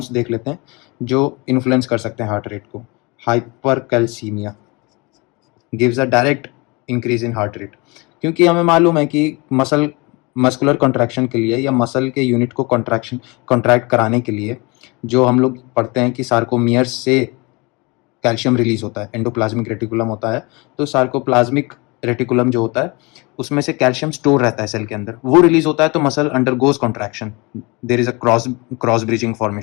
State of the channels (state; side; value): quieter; right; 26.8 dB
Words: देख लेते हैं जो इन्फ्लुएंस कर सकते हैं हार्ट रेट को। Hyper calcaemia gives a direct increase in heart rate, क्योंकि हमें मालूम है कि मस्कुलर कॉन्ट्रैक्शन के लिए या मसल के यूनिट को कॉन्ट्रैक्ट कराने के लिए जो हम लोग पढ़ते हैं कि सार्कोमियर्स से कैल्शियम रिलीज होता है, एंडोप्लाज्मिक रेटिकुलम होता है। तो सार्कोप्लाज्मिक रेटिकुलम जो होता है उसमें से कैल्शियम स्टोर रहता है सेल के अंदर, वो रिलीज होता है तो muscle undergoes contraction, there is a cross bridging